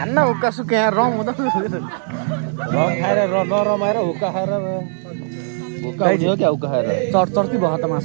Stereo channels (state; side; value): silent; left; 61 dB below the other